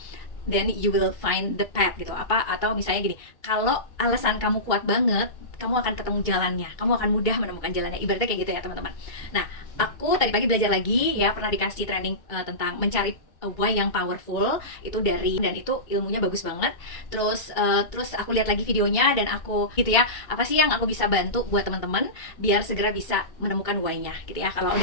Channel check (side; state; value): right; late; 2.2 ms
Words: then you will find the path gitu. Apa atau misalnya gini, kalau alasan kamu kuat banget, kamu akan ketemu jalannya, kamu akan mudah menemukan jalannya, ibaratnya kayak gitu ya teman-teman. Nah, aku tadi pagi belajar lagi ya, pernah dikasih training tentang mencari why yang powerful itu dari, dan itu ilmunya bagus banget. Terus aku lihat lagi videonya dan aku gitu ya, apa sih yang aku bisa bantu buat teman-teman biar segera bisa menemukan why-nya gitu ya.